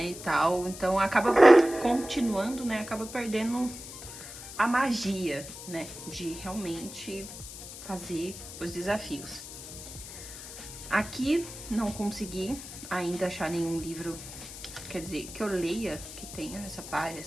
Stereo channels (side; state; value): left; noise; hiss, 12 dB below the sound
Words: e tal. Então acaba continuando, né, acaba perdendo a magia, né, de realmente fazer os desafios. Aqui não consegui ainda achar nenhum livro, quer dizer, que eu leia, que tenha